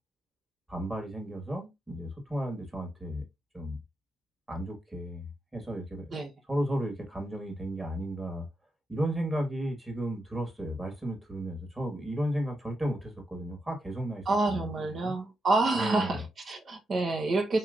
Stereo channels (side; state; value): both; normal; correlation 0.85